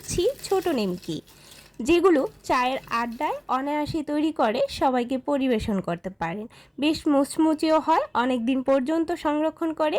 ছোট নিমকি, যেগুলো চায়ের আড্ডায় অনায়াসে তৈরি করে সবাইকে পরিবেশন করতে পারেন। বেশ মুচমুচেও হয়, অনেক দিন পর্যন্ত সংরক্ষণ করে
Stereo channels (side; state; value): both; identical; correlation 1.00